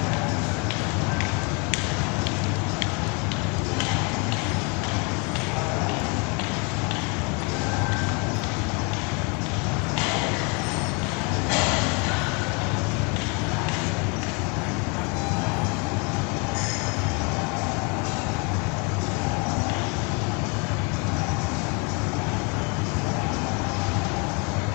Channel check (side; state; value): right; quieter; 32.1 dB